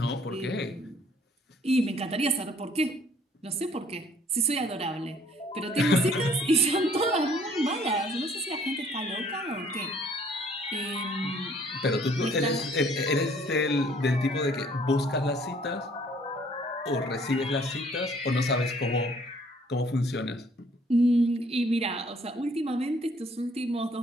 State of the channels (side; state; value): both; normal; correlation 0.59